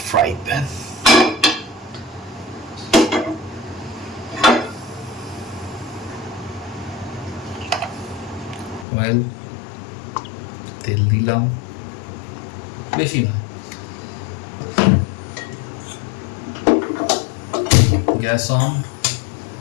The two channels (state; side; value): drops out; right; at 8.8 s